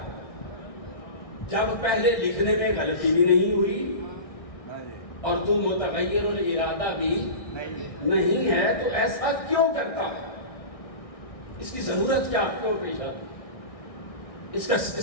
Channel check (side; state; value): right; late; 1.6 ms